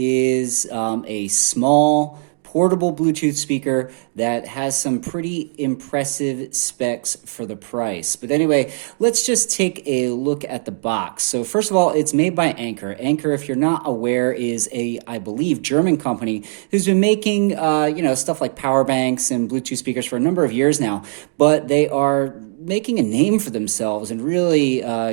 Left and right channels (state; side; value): silent; left; digital silence